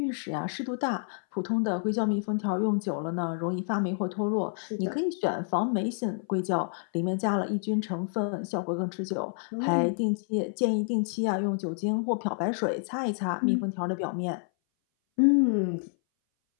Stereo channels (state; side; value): silent; right; 58 dB below the other